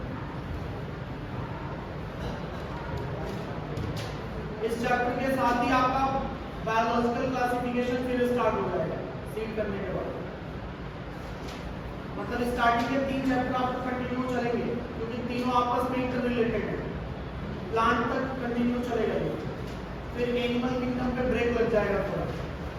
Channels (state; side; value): identical; both; correlation 1.00